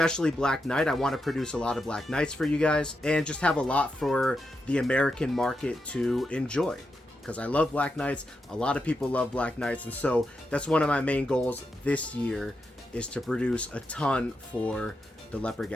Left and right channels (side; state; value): both; normal; correlation 0.86